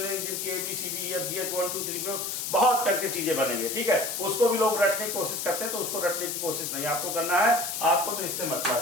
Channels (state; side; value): noise; left; hiss, 3 dB below the sound